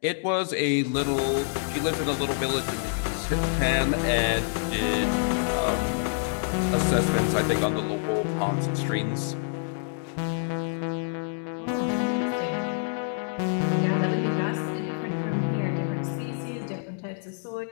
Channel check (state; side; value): silent; right; digital silence